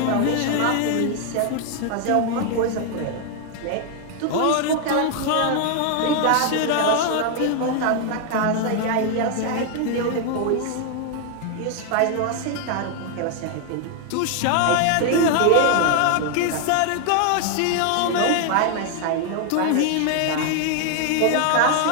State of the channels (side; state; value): both; different; correlation 0.00